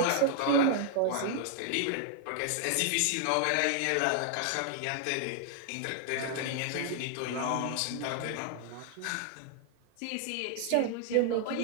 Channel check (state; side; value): different; both; correlation 0.00